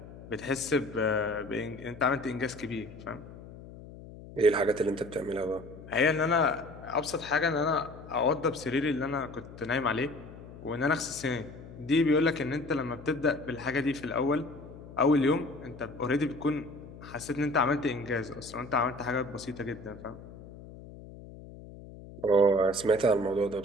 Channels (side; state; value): left; noise; hum, 16 dB below the sound